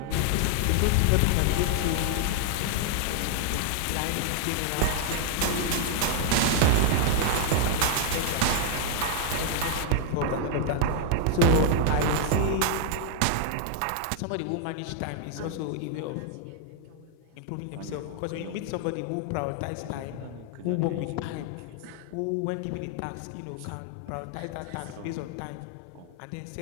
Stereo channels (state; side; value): different; both; correlation 0.00